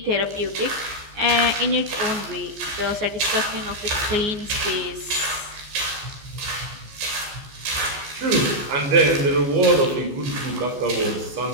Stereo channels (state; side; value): late; left; 14 ms